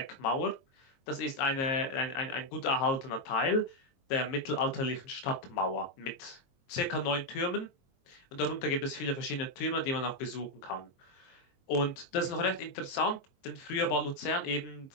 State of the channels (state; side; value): late; right; 22 ms